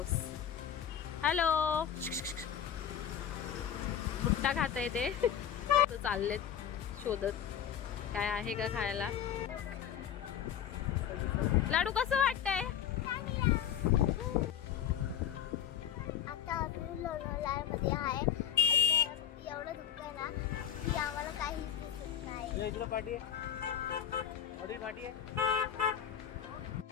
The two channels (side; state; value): right; quieter; 9.3 dB